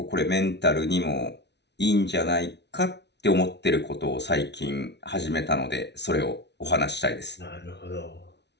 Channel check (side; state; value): right; late; 0.50 ms